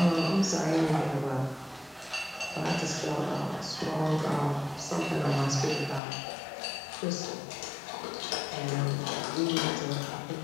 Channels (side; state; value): right; drops out; at 6.0 s